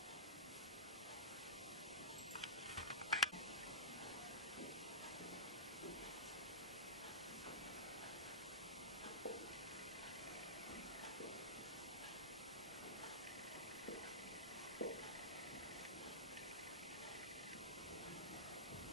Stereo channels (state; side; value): normal; both; correlation -0.15